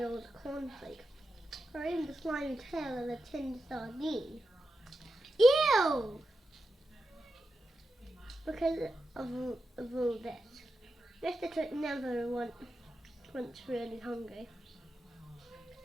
old cornflake. Or even the slimy tail of a tinned sardine. Ew! Because of all this, Mr. Twit never once really hungry.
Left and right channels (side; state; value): both; normal; correlation 0.89